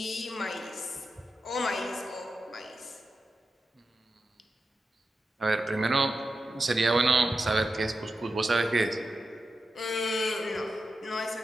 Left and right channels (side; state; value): both; normal; correlation 0.90